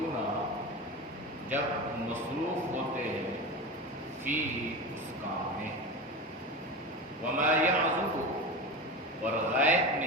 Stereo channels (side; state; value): both; normal; correlation 0.25